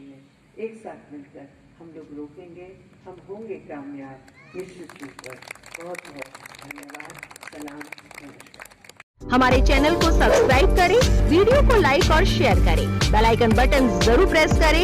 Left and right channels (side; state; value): both; identical; correlation 1.00